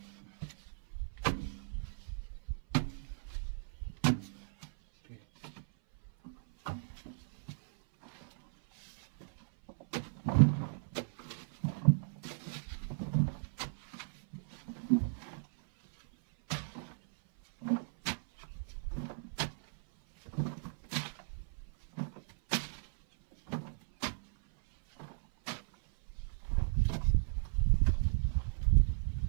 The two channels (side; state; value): left; silent; 54 dB below the other